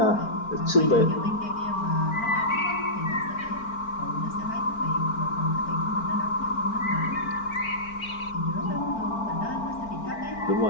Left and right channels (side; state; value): right; late; 4.4 ms